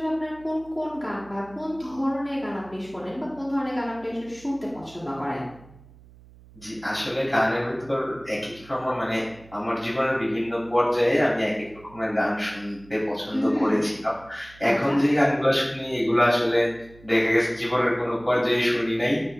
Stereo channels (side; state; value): right; noise; hum, 23 dB below the sound